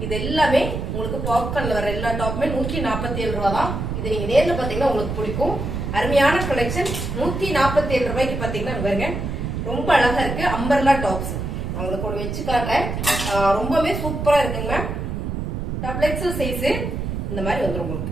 இது எல்லாமே உங்களுக்கு பாப்கார்ன்ல வர எல்லா டாப்புமே 147 ரூபா தான். இது நீங்க நேர்ல பாத்தீங்கன்னா உங்களுக்கு பிடிக்கும். அருமையான கலெக்ஷன். 147 ரூபாய்க்கு பாத்தீங்கன்னா பாருங்க ரொம்ப அழகா இருக்கு. அம்பர்லா டாப்ஸ் உங்களுக்கு ஒரு வச்சு காட்டுறேன். ரொம்பவே சூப்பரா இருக்குங்க. டபுள் எக்ஸல் சைஸ் இந்த மாதிரி வந்துடும் உங்களுக்கு.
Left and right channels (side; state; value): right; noise; rumble, 4 dB below the sound